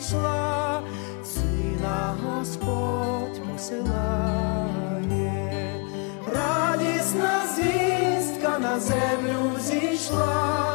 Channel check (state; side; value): quieter; right; 33.1 dB